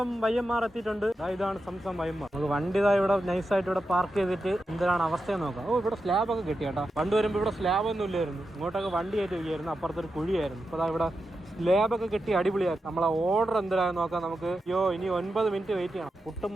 YMR എത്തിയിട്ടുണ്ട്. ഇതാണ് സംസം YMR. നമുക്ക് വണ്ടി ഇവിടെ നൈസായിട്ട് ഇവിടെ പാർക്ക് ചെയ്തിട്ട് എന്തിനാണ് അവസ്ഥയെന്ന് നോക്കാം. ഇവിടെ സ്ലാബ് ഒക്കെ കിട്ടി കേട്ടോ. പണ്ട് വരുമ്പോൾ ഇവിടെ സ്ലാബ് ഒന്നും ഇല്ലായിരുന്നു. ഇങ്ങോട്ടൊക്കെ വണ്ടി ആയിട്ട് വയ്യായിരുന്നു. അപ്പുറത്തൊരു കുഴിയായിരുന്നു. അപ്പോൾ ഇവിടെ സ്ലാബൊക്കെ കിട്ടി അടിപൊളിയാക്കി. നമ്മളെ ഓർഡർ എന്തിനാന്ന് നോക്കാം നമുക്ക്. ഇനി 9 മിനിറ്റ് വെയിറ്റ് ചെയ്യണം. പുട്ടും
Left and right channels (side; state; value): both; normal; correlation 0.89